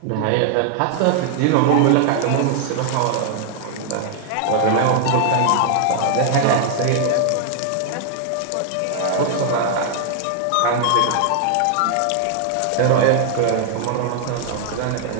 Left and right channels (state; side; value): different; both; correlation 0.00